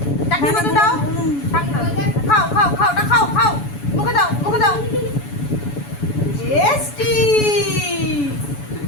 চাটনির মতন দাও খাও খাও খাও ওটা খাও খাও মুখে দাও টেস্টি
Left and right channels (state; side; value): late; right; 7.0 ms